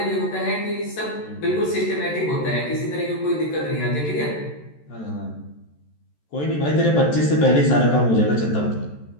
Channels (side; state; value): right; late; 14 ms